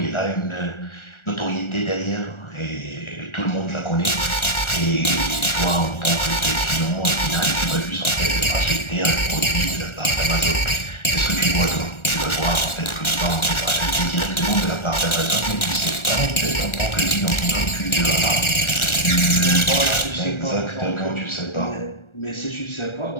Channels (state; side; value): late; right; 1.4 ms